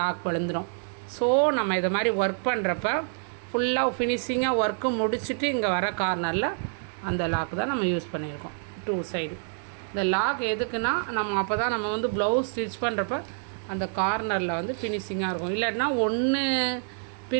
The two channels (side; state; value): left; silent; 59 dB below the other